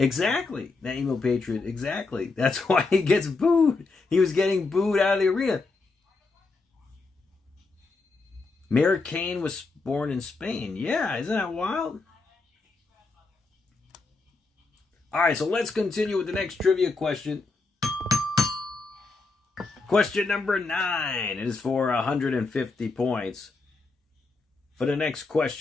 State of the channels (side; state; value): right; quieter; 3.8 dB